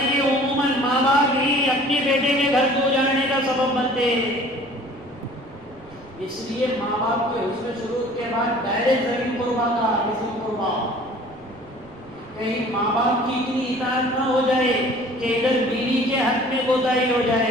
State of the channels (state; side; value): noise; right; rumble, 24 dB below the sound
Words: یہ عموماً ماں باپ ہی اپنے بیٹے کے گھر کو اجاڑنے کا سبب بنتے ہیں. اس لیے ماں باپ کے حسن سلوک کے بعد ڈائریکٹ ذریع قربا کا حسن قربا. کہیں ماں باپ کی اتنی اطاعت نہ ہو جائے کہ ادھر بیوی کے حق میں کوتاہی ہو